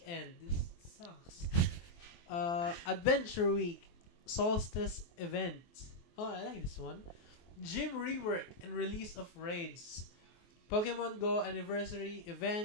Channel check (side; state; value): right; late; 23 ms